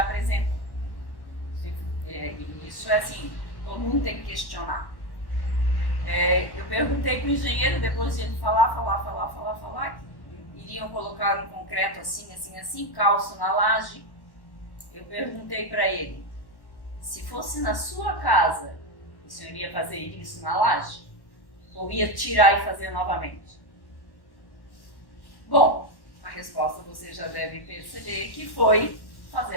E isso é assim, todo mundo tem que questionar. Eu perguntei para o engenheiro, depois de ele falar, que iriam colocar um concreto assim, calço na laje. Eu perguntei para ele, se fosse na sua casa, o senhor ia fazer isso na laje? Ou ia tirar e fazer novamente? Bom, a resposta você já deve perceber que foi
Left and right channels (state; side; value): late; right; 1.1 ms